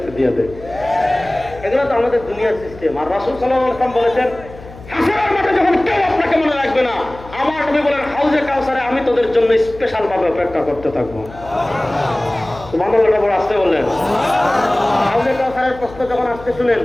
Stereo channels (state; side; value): noise; left; hum, 18 dB below the sound